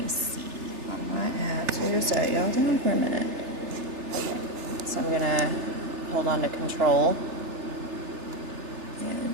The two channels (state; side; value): late; left; 3.4 ms